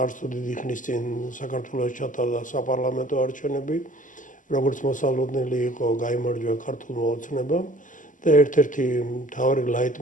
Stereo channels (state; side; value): late; right; 0.38 ms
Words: არც თუ დიდი ხნის წინ საქართველოს ჩატარდა საპარლამენტო არჩევნები, როგორც მოსალოდნელი იყო გაიმარჯვა ქართულმა ოცნებამ და ერთ-ერთი მთავარი